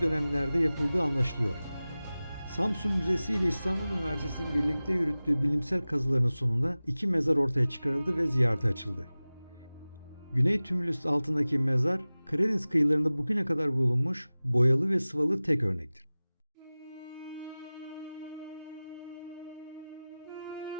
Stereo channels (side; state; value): both; inverted; correlation -0.97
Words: dönemlerde yapıldığı anlaşılıyor. Samsun Müzesi ile İstanbul Üniversitesi'nin birlikte yürüttüğü bilimsel kazıların sonunda iki mezar ortaya çıkarıldı ve ziyarete açıldı. Güney tümülüs altındaki mezar, Karadeniz kıyılarında bugüne kadar bulunmuş boyalı ve sıvalı tek örnektir.